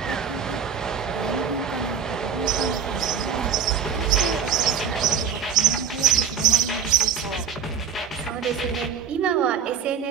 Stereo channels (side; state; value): left; quieter; 7.3 dB